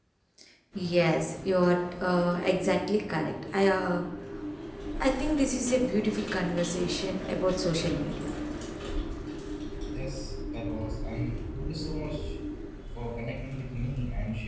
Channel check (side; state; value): both; identical; correlation 1.00